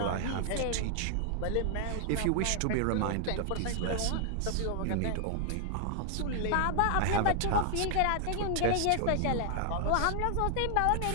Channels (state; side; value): different; both; correlation 0.00